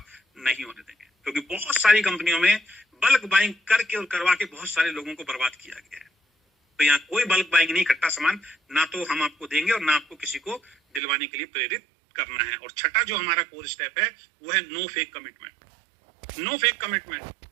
नहीं होने देंगे। क्योंकि बहुत सारी कंपनियों में बल्क बाइंग करके और करवा के बहुत सारे लोगों को बर्बाद किया गया है। तो यहाँ कोई बल्क बाइंग नहीं, इकट्ठा सामान ना तो हम आपको देंगे और ना आपको किसी को दिलवाने के लिए प्रेरित करना है। और छठा जो हमारा कोर स्टेप है, वो है no fake commitment. No fake commitment.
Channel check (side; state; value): left; drops out; at 11.0 s